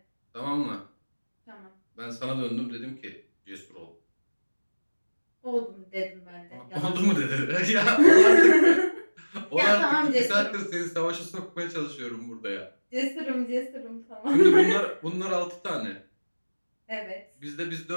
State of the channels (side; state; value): both; inverted; correlation -1.00